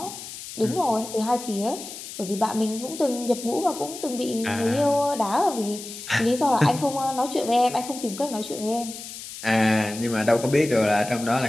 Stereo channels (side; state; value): left; noise; hiss, 11 dB below the sound